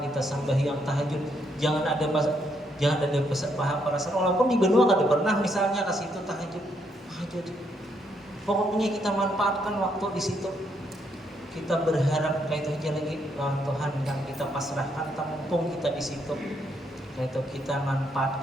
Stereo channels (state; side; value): normal; both; correlation 0.75